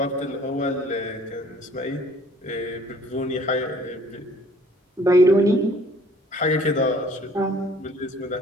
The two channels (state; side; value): normal; both; correlation 0.55